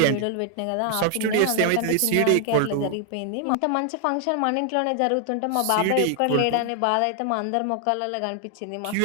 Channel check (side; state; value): both; different; correlation 0.00